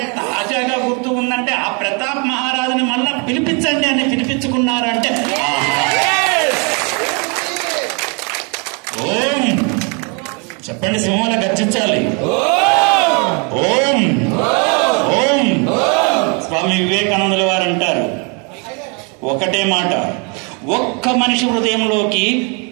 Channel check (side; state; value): left; quieter; 34.6 dB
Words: తాజాగా గుర్తు ఉందంటే, ఆ ప్రతాప్ మహారాజుని మళ్ళా పిలిపించండి అని పిలిపించుకున్నారంటే, ఓం చెప్పండి, సింహాల గర్జించాలి. ఓం ఓం. స్వామి వివేకానందుల వారు అంటారు ఒకటే మాట, ఒక్క మనిషి హృదయంలోకి